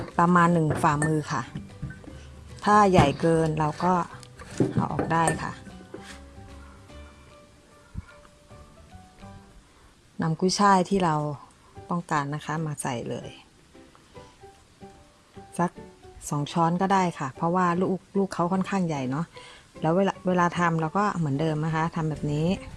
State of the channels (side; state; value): both; identical; correlation 1.00